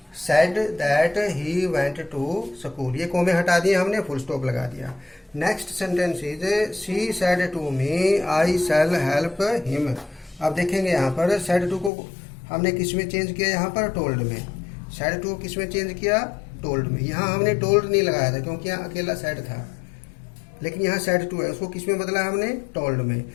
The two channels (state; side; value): drops out; right; at 11.9 s